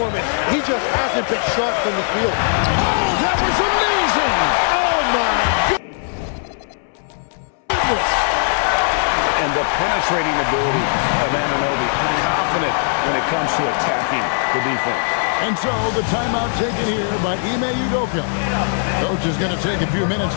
He just hasn't been sharp from the field. Oh, that was amazing! Oh, my goodness. And the penetrating ability of Anunoby, confident when it comes to attacking the defense. And so the timeout taken here by Ime Udoka. Coach is going to take a few minutes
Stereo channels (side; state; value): right; silent; 66 dB below the other